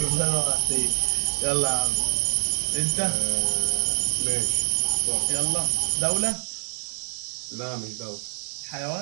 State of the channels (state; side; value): silent; left; 61 dB below the other